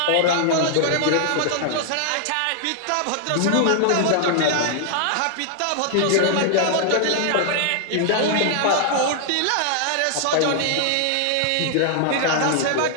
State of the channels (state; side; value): different; both; correlation 0.00